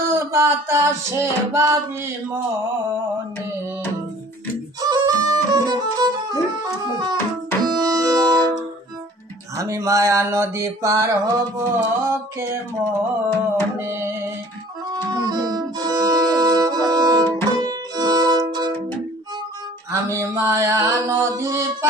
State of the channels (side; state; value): both; normal; correlation 0.50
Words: বাতাসে ভাবি মনে আমি মায়া নদী পার হব কেমনে আমি মায়া নদী